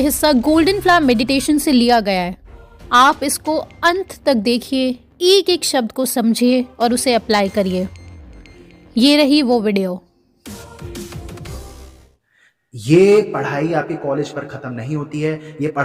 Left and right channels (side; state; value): both; identical; correlation 1.00